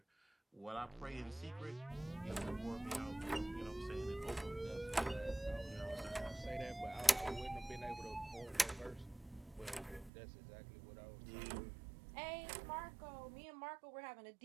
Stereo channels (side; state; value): left; drops out; at 10.1 s